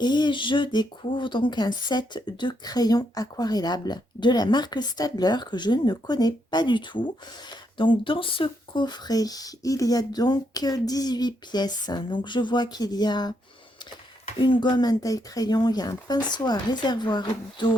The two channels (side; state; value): both; normal; correlation 0.77